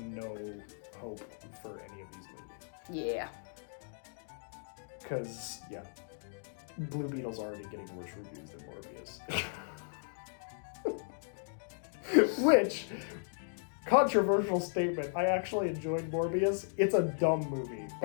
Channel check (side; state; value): right; silent; digital silence